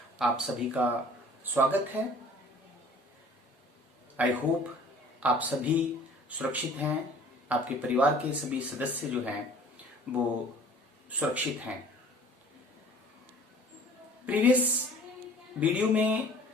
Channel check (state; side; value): normal; both; correlation 0.49